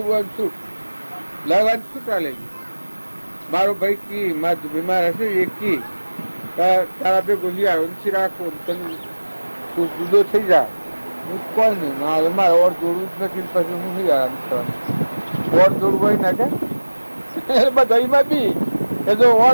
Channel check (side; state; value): both; inverted; correlation -1.00